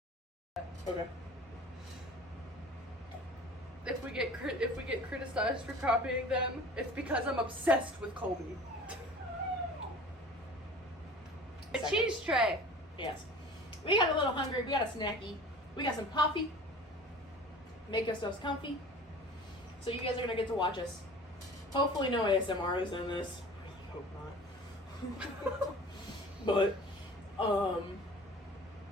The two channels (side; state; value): both; normal; correlation 0.42